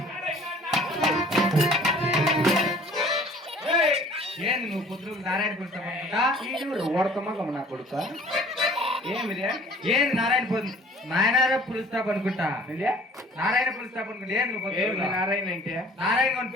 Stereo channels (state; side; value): normal; both; correlation 0.51